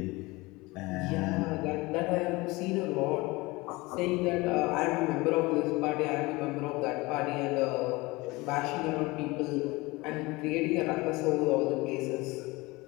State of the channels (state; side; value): quieter; right; 22.6 dB